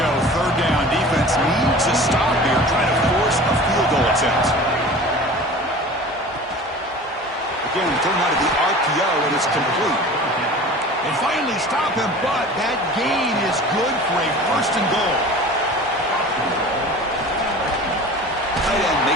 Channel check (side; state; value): both; normal; correlation 0.40